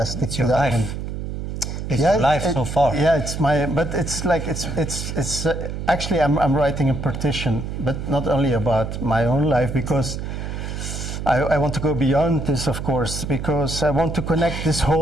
stick It's to your that life. one. It's your life so far. Yeah, it's my. But it's like it's actually I'm writing a petition, but not only about my own life, because I want to go beyond this, of course, because I want to connect this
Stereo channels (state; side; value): noise; right; hum, 5 dB below the sound